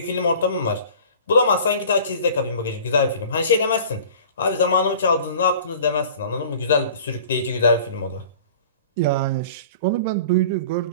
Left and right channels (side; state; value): both; inverted; correlation -0.45